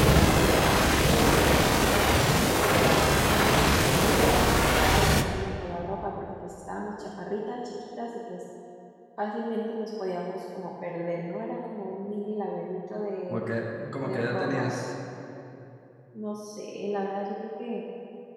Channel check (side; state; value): both; identical; correlation 1.00